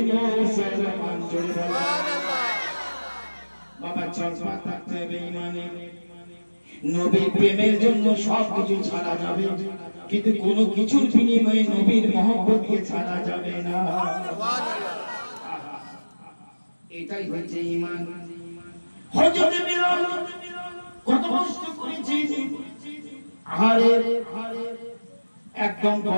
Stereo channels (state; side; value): inverted; both; correlation -1.00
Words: মুসলমান। বাবা চলবা থাকতে বেঈমানি। নবীর প্রেমের জন্য সবকিছু ছাড়া যাবে, কিন্তু কোনো কিছুর বিনিময়ে নবীর মহব্বতকে ছাড়া যাবে না। এটাই হচ্ছে ঈমান। হযরত বিলাল কত কষ্ট করেছে, আহারে একদম